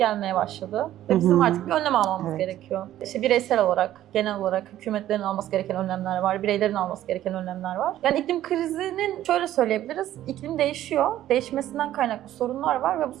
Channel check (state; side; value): quieter; left; 13.0 dB